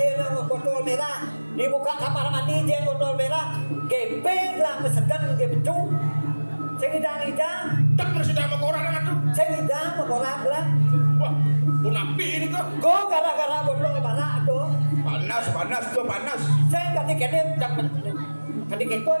botol merah dibuka kamar mandi jen botol merah kepeng lah mesegan ke becu segidang-idang Tak bersedia sama orang dengan tuh. segidang memorak lah Wah, punapi ini kok. go gara-gara botol merah tuh Panas, panas tuh panas. saya kadang-kadang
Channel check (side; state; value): both; inverted; correlation -1.00